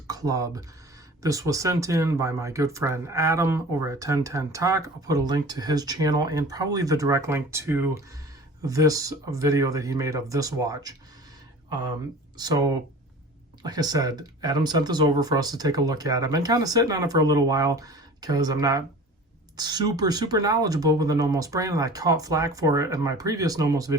Club. This was sent in by my good friend Adam over at 1010 Tock. I'll put a link to his channel and probably the direct link to this video that he made of this watch. So like I said, Adam sent this over for us to take a look at. I've been kind of sitting on it for a little while because I'm not super knowledgeable with the Nomos brand, and I caught flack for it in my previous Nomos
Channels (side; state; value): both; normal; correlation 0.41